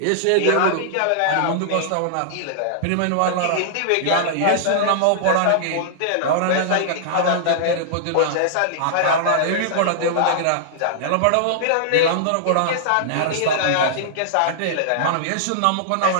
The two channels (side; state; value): both; different; correlation -0.01